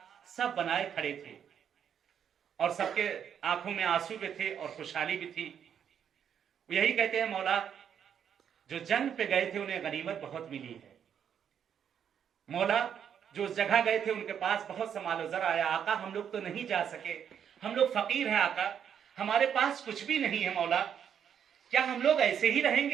सब बनाए खड़े थे और सबके आंखों में आंसू भी थे और खुशहाली भी थी। यही कहते हैं मौला जो जंग पे गए थे उन्हें गनीमत बहुत मिली है, मौला जो उस जगह गए थे उनके पास बहुत सा मालो ज़र आया, आका हम लोग तो नहीं जा सके, हम लोग फकीर हैं आका, हमारे पास कुछ भी नहीं है मौला, क्या हम लोग ऐसे ही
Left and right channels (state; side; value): quieter; left; 8.4 dB